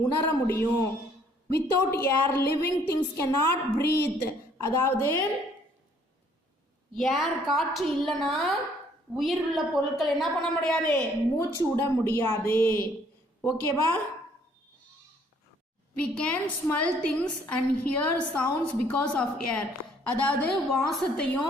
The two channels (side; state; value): both; normal; correlation 0.62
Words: உணர முடியும். Without air living things can not breathe. அதாவது ஏர், காற்று இல்லைன்னா உயிர் உள்ள பொருட்கள் என்ன பண்ண முடியாது, மூச்சு விட முடியாது. ஓகேவா, we can smell things and hear sounds because of air. அதாவது